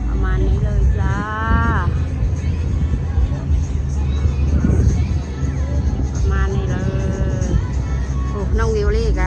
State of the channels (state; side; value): identical; both; correlation 1.00